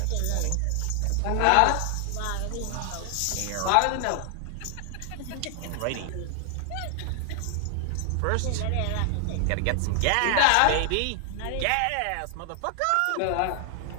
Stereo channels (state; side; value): different; both; correlation 0.00